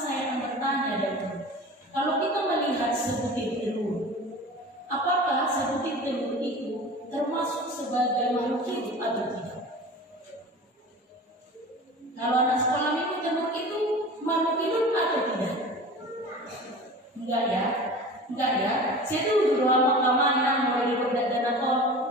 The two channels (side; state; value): both; normal; correlation 0.37